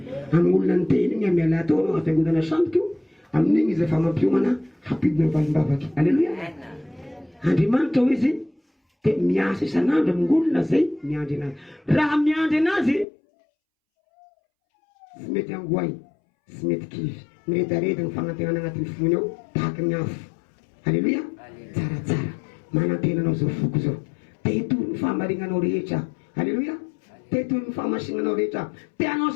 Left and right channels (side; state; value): right; drops out; at 13.1 s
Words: Amin'ny olona ny teny igny miala atao anao afiangodana samboka io amin'igny izy efa mampiomana hampidina valim-bavaky. Halleluja. Andriamanitra ho izy dia miasa isan'andro amin'ny olona zay miandry anazy. Raha miandry anazy sy mety angoay sy mety kivy miredareda ny fagnantenana agnatin'ny fony ao tahaky ny afo. Halleluja. Tsaratsara manantenanao zao foko zao tehitory ny fahamarinanao rehetra. Halleluja. Tehitory ny fahamasinanao rehetra teanao